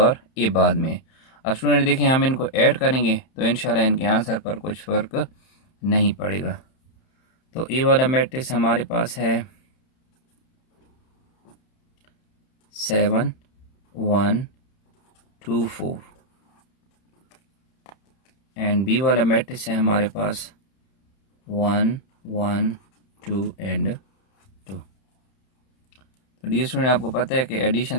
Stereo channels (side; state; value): right; late; 31 ms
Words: A बाद में है। अब स्टूडेंट देखें हम इनको ऐड करेंगे तो इंशाल्लाह इनके आंसर पर कुछ फ़र्क नहीं पड़ेगा। तो A वाला मैट्रिक्स हमारे पास है 7, 1, 2, 4, एंड B वाला मैट्रिक्स है हमारे पास 1, 1, 2 एंड 2। तो डियर स्टूडेंट आपको पता है कि एडिशन